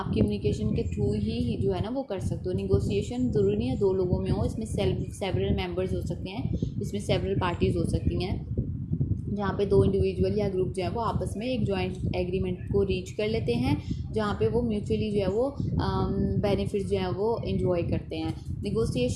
कम्युनिकेशन के थ्रू ही जो है ना वो कर सकते हो। निगोशिएशन ज़रूरी नहीं है दो लोगों में हो, इसमें सेवरल मेंबर्स हो सकते हैं, इसमें सेवरल पार्टीज़ हो सकती हैं, जहाँ पे दो इंडिविजुअल या ग्रुप जो है वो आपस में एक जॉइंट एग्रीमेंट को रीच कर लेते हैं, जहाँ पे वो म्यूचुअली जो है वो बेनिफिट्स जो है वो इंजॉय करते हैं।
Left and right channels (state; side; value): identical; both; correlation 1.00